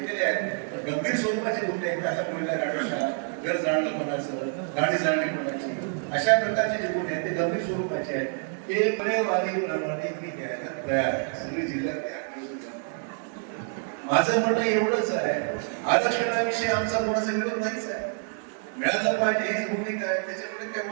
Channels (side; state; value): left; silent; 57 dB below the other